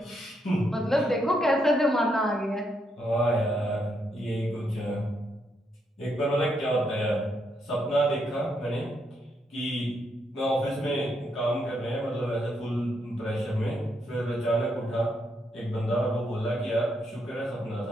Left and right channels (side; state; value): both; normal; correlation 0.78